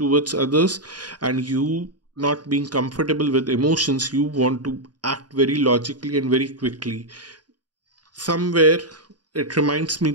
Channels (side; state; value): left; late; 0.70 ms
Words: others, and you not being comfortable with emotions, you want to act very logically and very quickly. Somewhere it reminds me